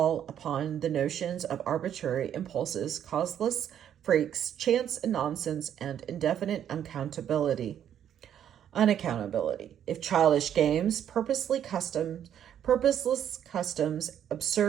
upon the notions of arbitrary impulses, causeless freaks, chance and nonsense, and indefinite unaccountability. If childish games, purposeless customs,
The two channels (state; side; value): quieter; left; 9.8 dB